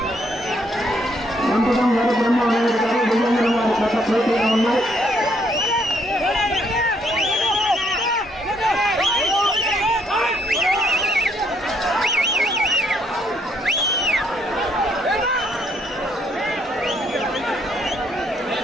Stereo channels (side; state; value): both; normal; correlation 0.70